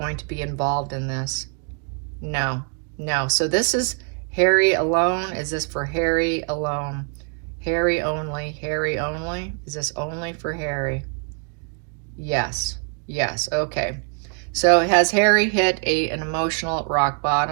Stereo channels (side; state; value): left; quieter; 39.2 dB